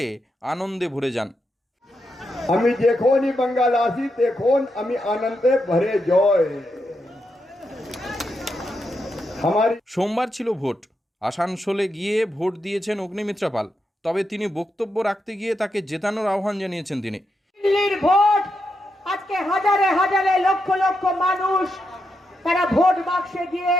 আনন্দে ভরে যান। আমি যখনই বাঙ্গাল আসি তখন আমি আনন্দে ভরে যাই। সোমবার ছিল ভোট। আসানসোলে গিয়ে ভোট দিয়েছেন অগ্নিমিত্রা পাল। তবে তিনি বক্তব্য রাখতে গিয়ে তাকে জেতানোর আহ্বান জানিয়েছেন তিনি। দিল্লির ভোট আজকে হাজারে হাজারে লক্ষ লক্ষ মানুষ তারা ভোট বাক্সে গিয়ে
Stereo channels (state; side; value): normal; both; correlation 0.84